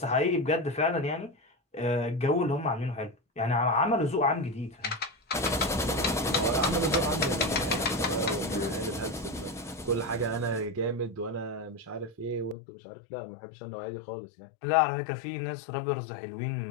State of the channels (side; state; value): right; drops out; at 12.6 s